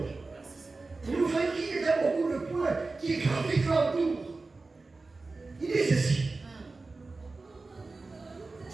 Merci Seigneur. Et nous voyons qu'il y a beaucoup de points qui gravitent autour. Il dit ceci.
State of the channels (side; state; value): left; quieter; 3.6 dB